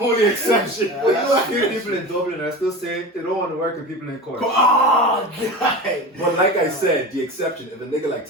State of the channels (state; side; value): normal; both; correlation 0.30